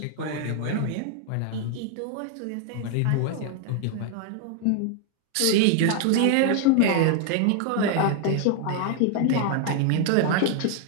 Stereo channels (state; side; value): different; both; correlation 0.00